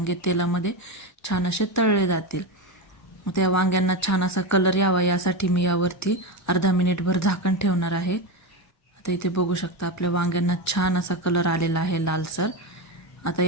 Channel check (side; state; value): both; normal; correlation 0.15